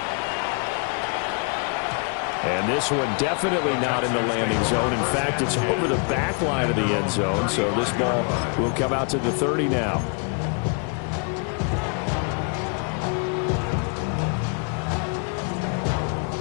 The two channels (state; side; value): quieter; right; 38.3 dB